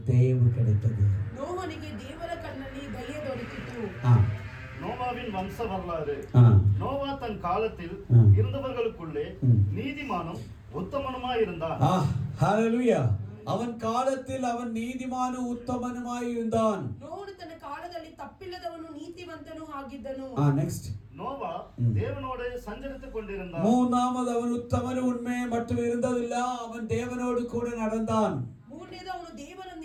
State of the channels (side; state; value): both; identical; correlation 1.00